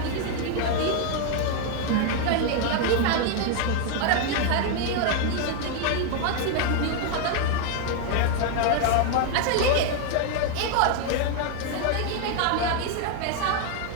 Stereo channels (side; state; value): both; different; correlation 0.00